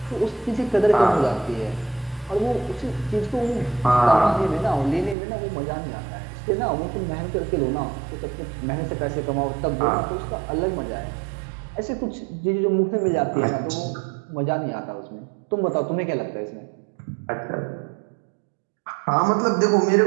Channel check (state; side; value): drops out; left; at 5.2 s